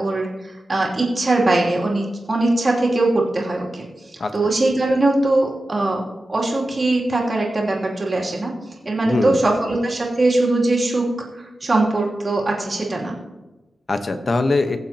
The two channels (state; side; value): normal; both; correlation 0.93